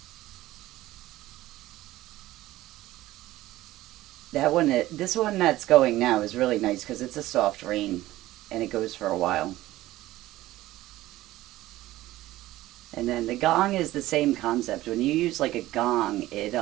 This one that's going now is really nice because it's a soft rain and it goes for a while. And then the gong is the same concept. When you use like a gong, it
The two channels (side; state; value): left; quieter; 16.2 dB